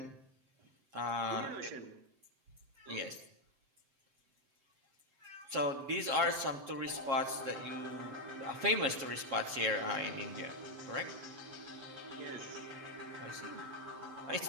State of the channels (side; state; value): left; late; 7.3 ms